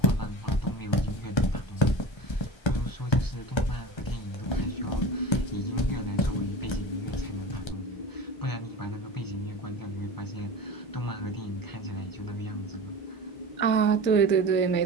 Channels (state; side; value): late; right; 1.3 ms